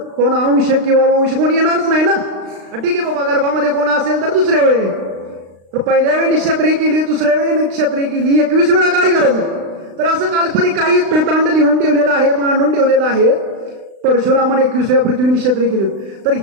कोण अंश किंवा वंश कोण येणारच नाही ना. ठीक आहे बाबा, गर्भामध्ये कोण असेल तर दुसऱ्या वेळी, तर पहिल्या वेळी निक्षत्रिय केली, दुसऱ्या वेळी निक्षत्रिय केली, 21 वेळा काय गरज आहे? तर असं काल्पनिक काही तोटांड लिहून ठेवलेलं आहे, मांडून ठेवलेलं आहे. परशुरामाने 21 वेळा पृथ्वी निक्षत्रिय केली होती. तर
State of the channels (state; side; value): late; left; 36 ms